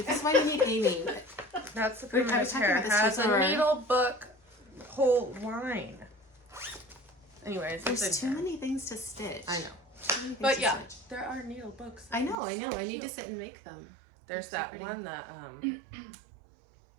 is why we need Aimee. That's the I primitive was talking hair. about It this has before. a needle book whole line. Anyways, There's too many things to stitch. I know. Too many things But to yeah, stitch. there are needle books. I know. I So need to cute. sit and make them. There's They're so that pretty. one that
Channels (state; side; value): drops out; left; at 12.4 s